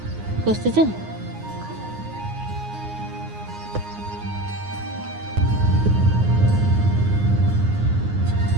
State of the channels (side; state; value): left; late; 9.6 ms